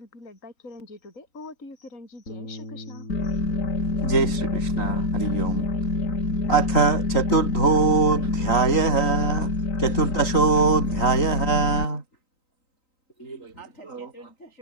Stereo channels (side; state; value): right; late; 3.9 ms